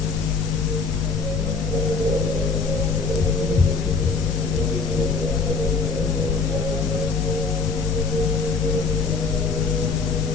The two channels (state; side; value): quieter; right; 4.6 dB